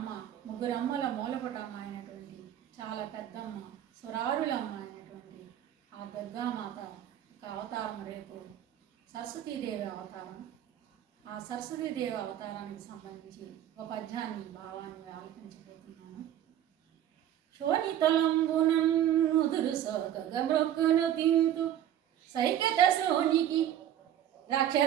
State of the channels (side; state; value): left; quieter; 11.0 dB